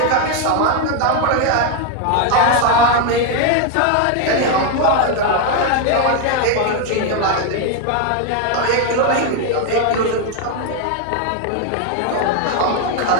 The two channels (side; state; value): both; different; correlation 0.01